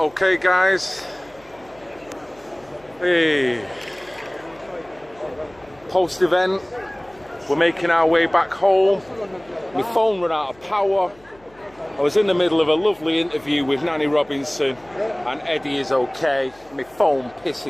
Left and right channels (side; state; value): left; noise; hum, 28 dB below the sound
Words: guys, hey, post-event, we're making our way back home. My phone ran out of power. I was in the middle of a lovely interview with Nanny Robinson, and Eddie is okay. My phone